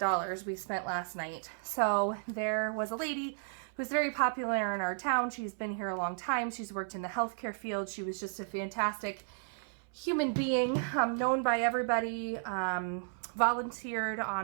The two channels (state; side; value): silent; left; 55 dB below the other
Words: we spent last night. So there was a lady who's very popular in our town. She's been here a long time. She's worked in the healthcare field. She was just a fantastic human being, known by everybody, volunteered